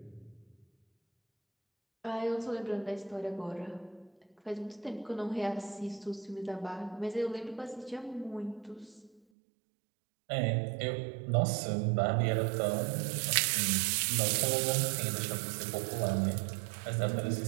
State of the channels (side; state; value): left; drops out; at 9.2 s